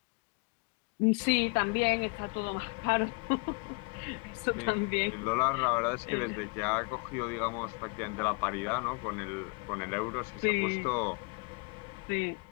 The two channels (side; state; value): right; quieter; 31.8 dB